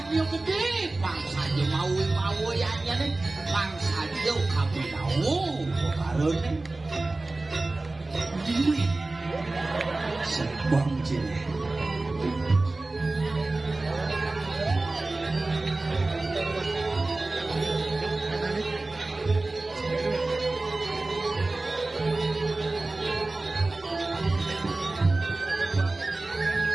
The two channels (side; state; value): left; quieter; 3.1 dB